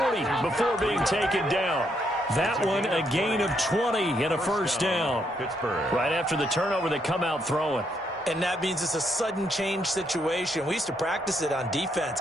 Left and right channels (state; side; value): normal; both; correlation 0.75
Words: before being taken down. That one a gain of 20 and a 1st down. Pittsburgh. Right after the turnover, they come out throwing. And that means it's a sudden change situation. We used to practice it on defense.